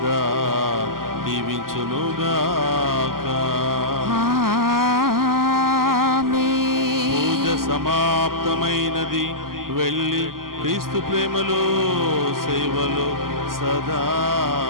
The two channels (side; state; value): left; late; 0.92 ms